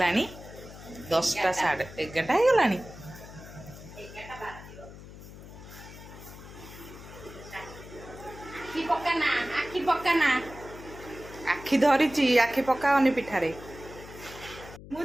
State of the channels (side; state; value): left; noise; hum, 16 dB below the sound